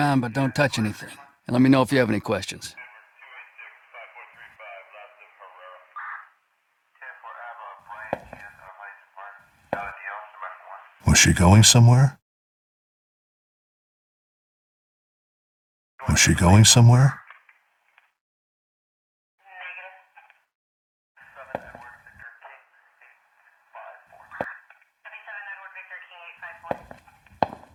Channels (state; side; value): identical; both; correlation 1.00